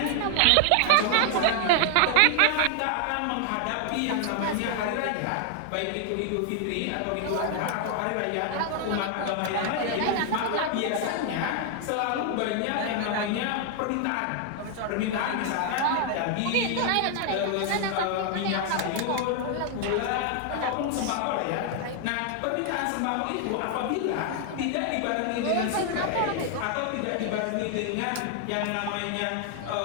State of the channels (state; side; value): different; both; correlation 0.00